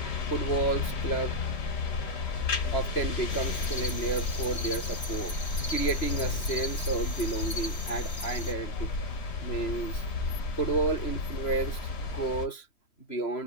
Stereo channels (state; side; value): late; right; 3.1 ms